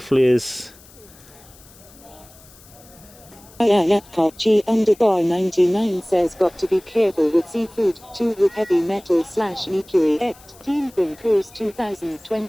flares. G_99 says, got to be careful with seafood, too, with heavy metal / mercury. Ingram Cruise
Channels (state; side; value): noise; left; hiss, 24 dB below the sound